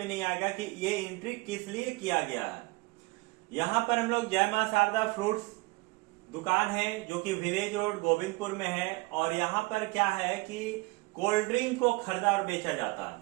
नहीं आएगा कि ये एंट्री किस लिए किया गया है। यहाँ पर हम लोग जय मां शारदा फ्रूट्स दुकान है जो कि विलेज रोड गोविंदपुर में है। और यहाँ पर क्या है कि कोल्ड ड्रिंक को खरीदा और बेचा जाता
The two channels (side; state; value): left; quieter; 24.0 dB